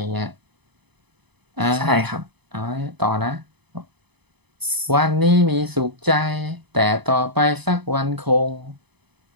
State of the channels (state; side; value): late; left; 0.99 ms